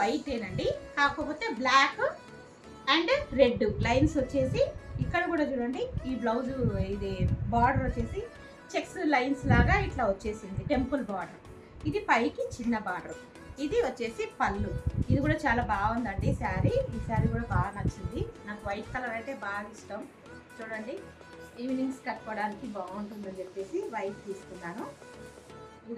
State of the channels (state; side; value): identical; both; correlation 1.00